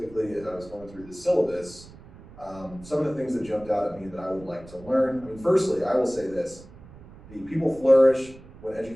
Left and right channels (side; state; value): right; noise; rumble, 20 dB below the sound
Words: as I was going through the syllabus, some of the things that jumped out at me that I would like to learn. I mean, firstly, I will say this: the people flourish when